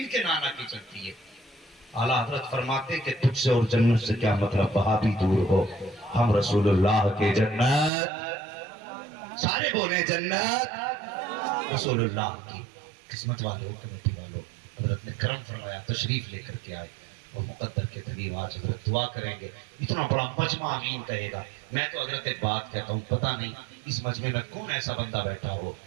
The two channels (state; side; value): drops out; left; at 7.9 s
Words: کے نانا کی چلتی ہے. اعلیٰ حضرت فرماتے کہ تجھ سے اور جنت سے کیا مطلب, وہاں بھی دور ہو, ہم رسول اللہ کے جنت. سارے بولے جنت رسول اللہ کی. قسمت والوں, کمیٹی والوں, حضرت نے کرم فرمایا, تشریف لے کر کے آئے اور مقدر کے تلیم آج حضرت دعا کریں گے. اتنا بڑا مجمع آمین کہے گا. میں تو حضرت ایک بات کہتا ہوں, پتہ نہیں اس مجمع میں کون ایسا بندہ بیٹھا ہو